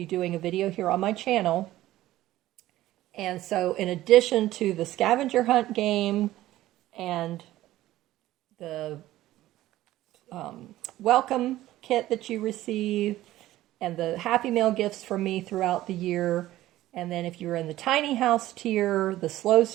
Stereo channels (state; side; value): quieter; left; 15.2 dB